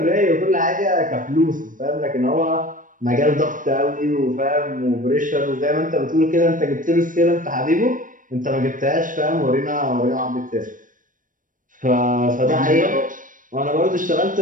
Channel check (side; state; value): left; late; 0.38 ms